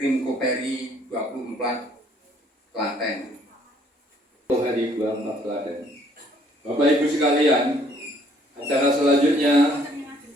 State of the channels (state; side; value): normal; both; correlation 0.63